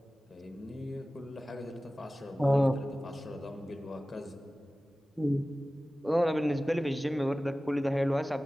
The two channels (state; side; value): normal; both; correlation 0.97